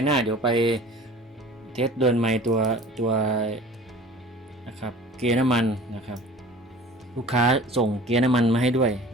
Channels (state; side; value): normal; both; correlation 0.44